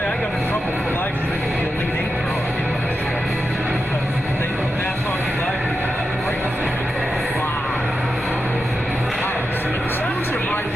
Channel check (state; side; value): normal; both; correlation 0.89